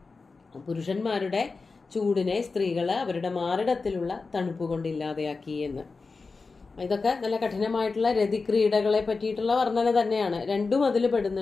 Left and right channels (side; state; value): right; quieter; 4.2 dB